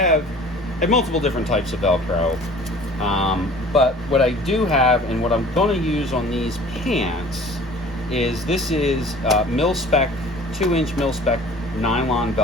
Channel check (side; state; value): both; normal; correlation 0.47